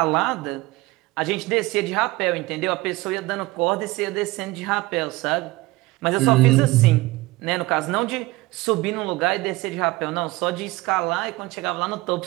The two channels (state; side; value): quieter; left; 20.3 dB